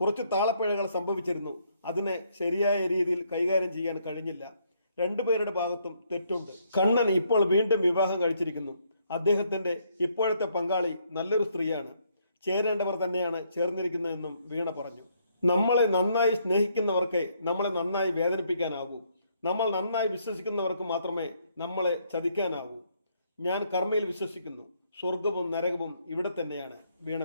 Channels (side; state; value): both; inverted; correlation -0.71